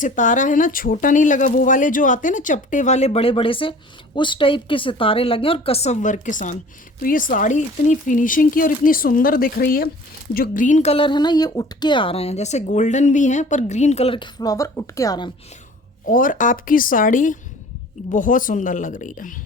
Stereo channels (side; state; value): both; normal; correlation 0.46